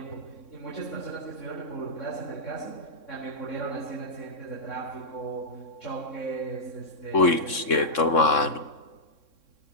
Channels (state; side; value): late; right; 3.6 ms